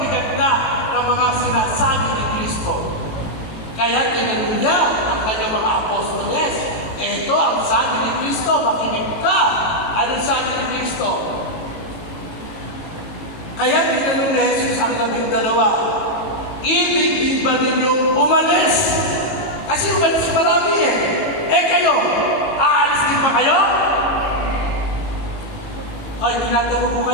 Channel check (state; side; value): late; right; 18 ms